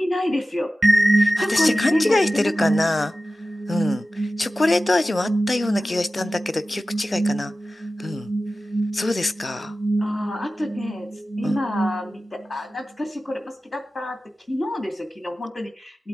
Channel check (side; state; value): both; normal; correlation 0.95